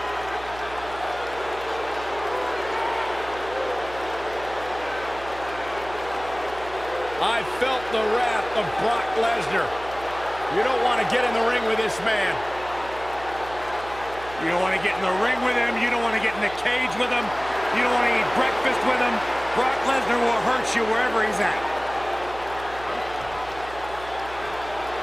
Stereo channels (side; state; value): right; noise; hum, 16 dB below the sound